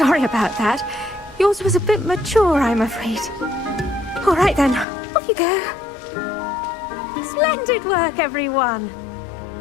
about that. Yours was a bit mature, I'm afraid. All right then, off you go. Splendid work, everyone.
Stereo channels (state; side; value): drops out; right; at 4.9 s